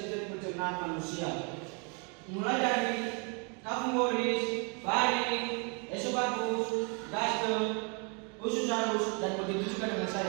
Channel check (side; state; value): left; quieter; 35.4 dB